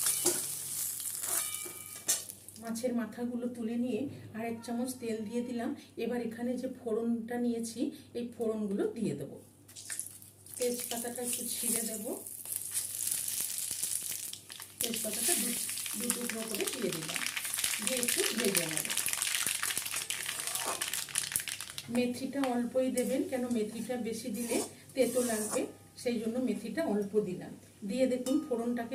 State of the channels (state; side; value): identical; both; correlation 1.00